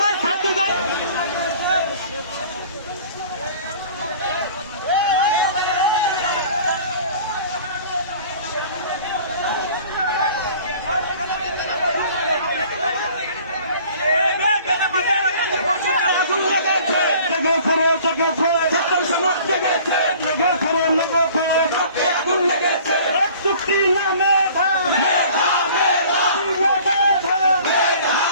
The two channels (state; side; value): inverted; both; correlation -0.49